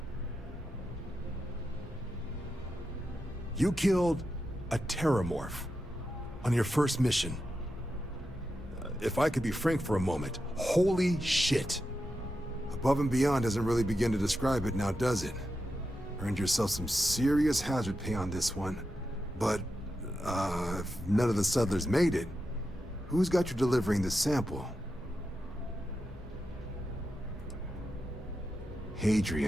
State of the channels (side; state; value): both; normal; correlation 0.88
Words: You killed a Terramorph on your first mission. If I could be frank for a moment, holy shit. Above and beyond doesn't really begin to describe it now, does it? Earned yourself some serious hazard pay on this one. But if none of the settlers made it, who's got you delivering the sample?